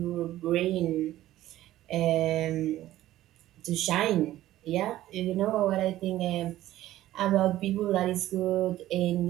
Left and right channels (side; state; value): left; quieter; 14.5 dB